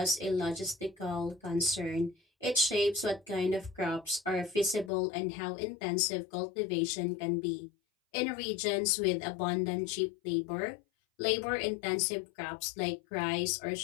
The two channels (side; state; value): right; drops out; at 4.9 s